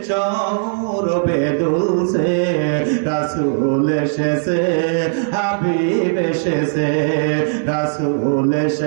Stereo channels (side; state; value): left; silent; 56 dB below the other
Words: সৌরভে দুলছে। রাসূল এসেছে, হাবিব এসেছে, রাসূল